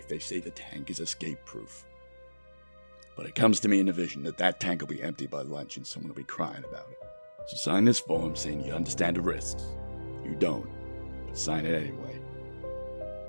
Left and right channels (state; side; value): inverted; both; correlation -1.00